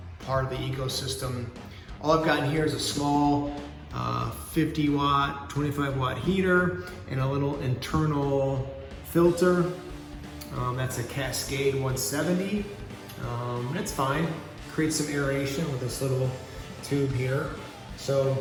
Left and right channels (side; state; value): both; identical; correlation 1.00